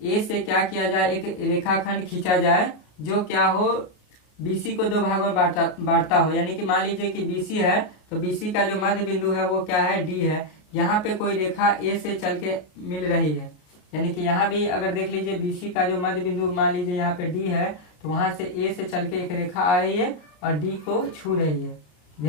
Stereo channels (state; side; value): late; right; 33 ms